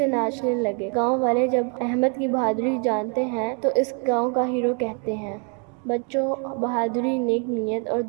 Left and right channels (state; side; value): quieter; left; 38.6 dB